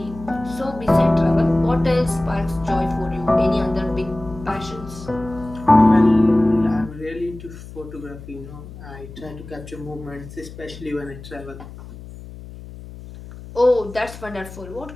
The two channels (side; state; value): left; noise; hum, 15 dB below the sound